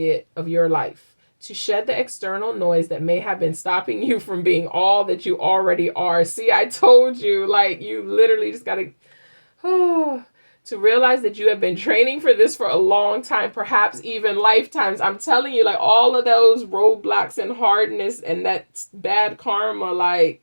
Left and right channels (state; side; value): inverted; both; correlation -1.00